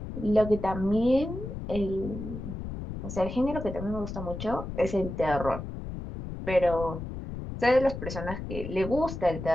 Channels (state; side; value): noise; left; rumble, 8 dB below the sound